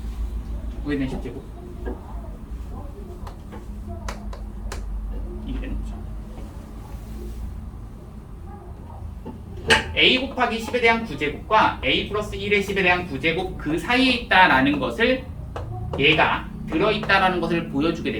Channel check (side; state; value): both; identical; correlation 1.00